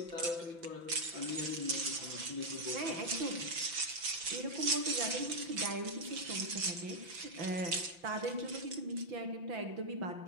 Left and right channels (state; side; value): late; left; 5.9 ms